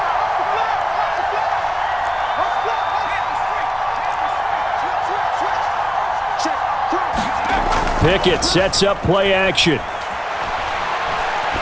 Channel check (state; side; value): identical; both; correlation 1.00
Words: Pickett sets up play action.